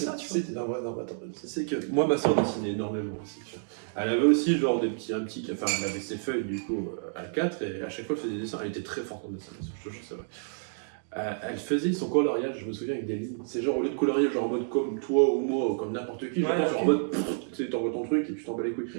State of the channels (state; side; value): silent; left; digital silence